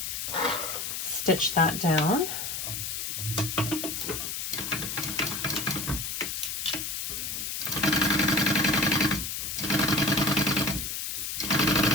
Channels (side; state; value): left; noise; hiss, 4 dB below the sound